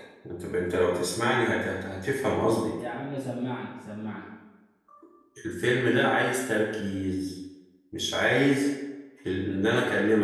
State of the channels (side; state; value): both; identical; correlation 1.00